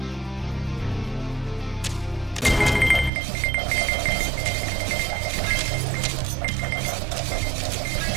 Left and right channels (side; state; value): left; drops out; at 3.1 s